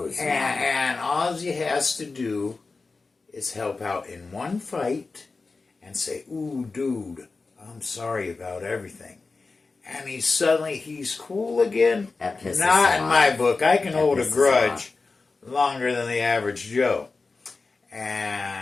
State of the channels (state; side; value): quieter; right; 4.0 dB